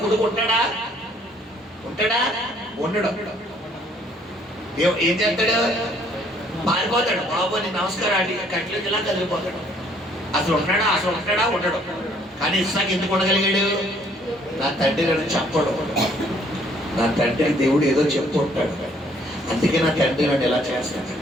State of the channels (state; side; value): normal; both; correlation 0.63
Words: కొడుకు ఉంటాడా, ఉండడు. ఏం చేస్తాడు, పారిపోతాడు. బాబు నీ నమస్కారం అడిగి కట్లో ఇలా కదిలిపోతాడు. అసలు ఉంటాడా ఉండడు. కానీ ఇస్సాకు ఎందుకు ఉండగలిగాడు, నా తండ్రి నన్ను చెప్పడు, నా తండ్రి దేవుడు ఏదో చెప్తూ ఉంటాడు, అందుకే నా తండ్రి నన్ను ఎలా చేస్తాడు